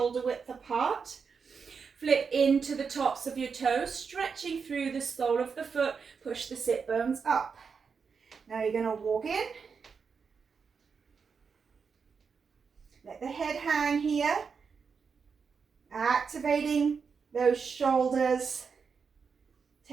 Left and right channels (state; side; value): quieter; left; 5.7 dB